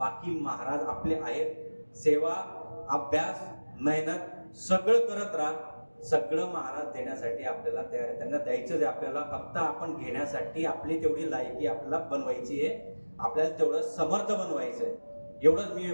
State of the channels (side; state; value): both; inverted; correlation -1.00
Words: महाराज आपले आहेत. सेवा, अभ्यास, मेहनत सगळं करत राहा. सगळं महाराज देण्यासाठी आपल्याला तयार आहे. त्यांना द्यायचंच आहे आपल्याला. फक्त आपण घेण्यासाठी आपली तेवढी लायकी आपल्याला बनवायची आहे. आपल्याला तेवढं समर्थ बनवायचं आहे. एवढंच